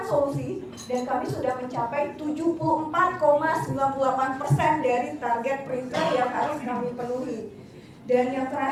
solusi, dan kami sudah mencapai 74,98% dari target printer yang harus kami penuhi. Dan yang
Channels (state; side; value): identical; both; correlation 1.00